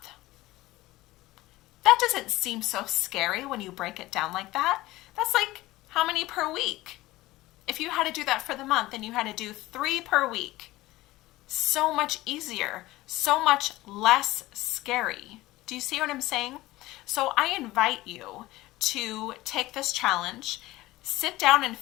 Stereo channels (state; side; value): quieter; right; 18.0 dB